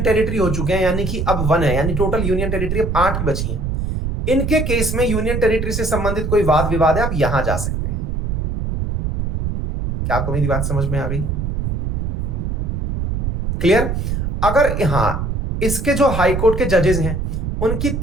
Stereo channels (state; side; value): noise; right; rumble, 1 dB below the sound